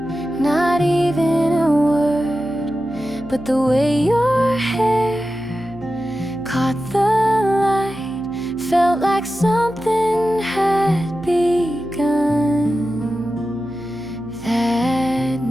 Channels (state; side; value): noise; right; hum, 19 dB below the sound